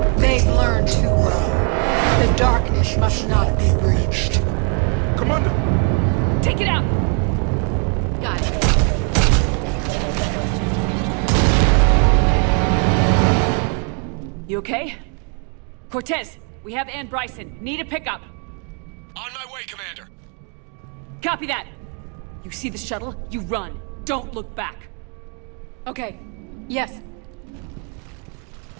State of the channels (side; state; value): left; quieter; 37.4 dB